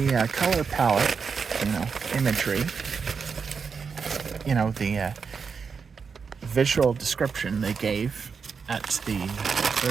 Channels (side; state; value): left; quieter; 5.7 dB